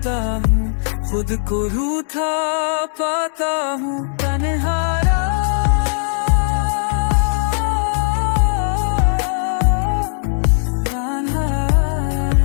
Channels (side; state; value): right; silent; digital silence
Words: हूँ, खुद को रूठा पाता हूँ। तन्हारा